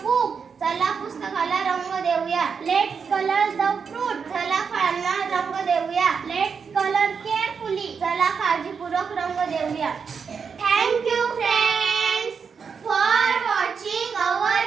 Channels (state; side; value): quieter; left; 6.0 dB